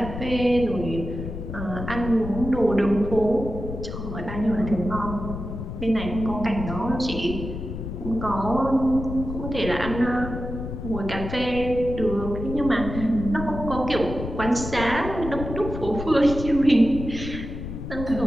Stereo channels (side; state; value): left; noise; rumble, 7 dB below the sound